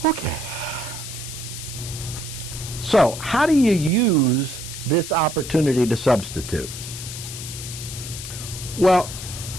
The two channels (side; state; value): left; noise; hiss, 9 dB below the sound